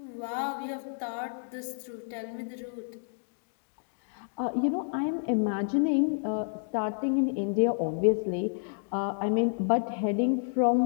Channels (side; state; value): right; silent; digital silence